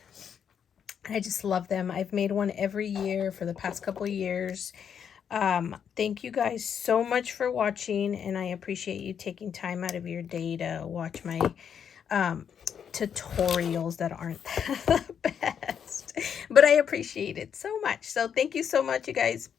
I just love them. I've made one every year for the past couple of years. Thank you guys so much for watching, and I appreciate you taking time out of your day to watch my tutorials that aren't the best, but I appreciate it so much. So thank you so much, you guys.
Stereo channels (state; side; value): quieter; right; 7.9 dB